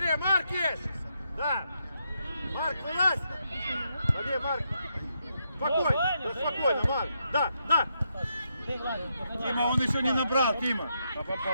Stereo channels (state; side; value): inverted; both; correlation -0.80